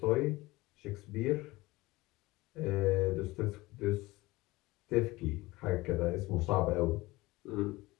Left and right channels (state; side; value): quieter; right; 20.5 dB